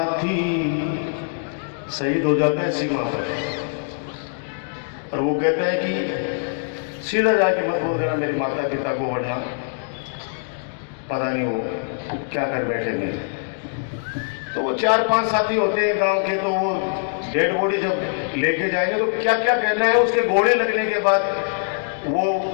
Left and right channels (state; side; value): silent; right; digital silence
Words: शहीद हो जाता है सीमा पर, और वो कहता है कि सीधा जाके मत बोल देना मेरे माता पिता को, वरना पता नहीं वो क्या कर बैठेंगे। तो वो 4-5 साथी होते हैं गांव के, तो वो डेड बॉडी जब लेके जाएंगे तो क्या क्या कहना है, उसके गोले लगने के बाद वो